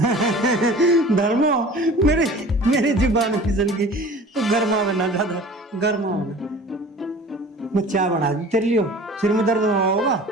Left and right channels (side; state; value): both; normal; correlation 0.43